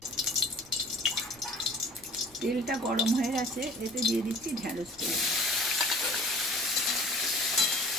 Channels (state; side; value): noise; left; rumble, 29 dB below the sound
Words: তেলটা গরম হয়ে গেছে, এতে দিয়ে দিচ্ছি ঢ্যাঁড়স তেল।